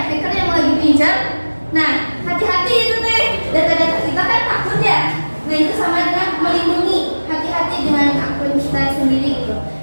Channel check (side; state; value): both; inverted; correlation -1.00